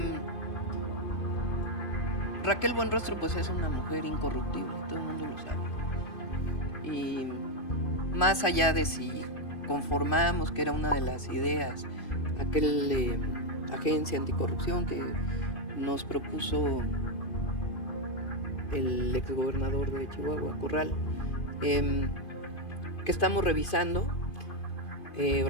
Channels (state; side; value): late; right; 2.5 ms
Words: Raquel Buenrostro pues es una mujer incorruptible, todo el mundo lo sabe. Y más allá de si conformamos que era una de las ideas, aquel agencia anticorrupción que nos propuso el exgobernador de Chihuahua, Corral, que estamos revisando,